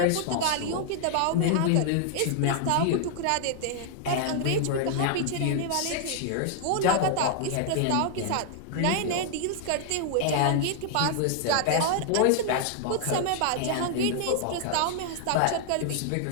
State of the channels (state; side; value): different; both; correlation 0.00